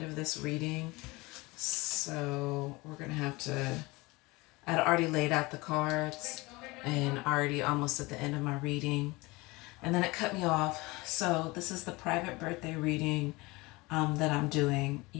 of this reading, so we're gonna have to. I'd already laid out the cards and already almost at the end of my reading, and then it cut me off. So this is the private birthday reading that I'm doing.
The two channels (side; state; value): right; quieter; 23.1 dB